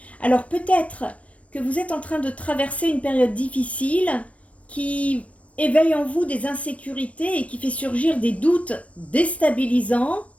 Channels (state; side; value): late; right; 0.064 ms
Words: Alors peut-être que vous êtes en train de traverser une période difficile qui éveille en vous des insécurités et qui fait surgir des doutes déstabilisants.